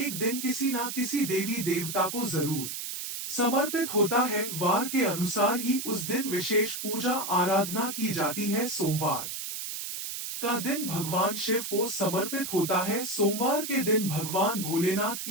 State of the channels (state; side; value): noise; right; hiss, 6 dB below the sound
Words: दिन किसी ना किसी देवी देवता को जरूर समर्पित होता है। वार के अनुसार ही उस दिन विशेष पूजा आराधना की जाती है। सोमवार का दिन भगवान शिव को समर्पित होता है। सोमवार के दिन भगवान भोलेनाथ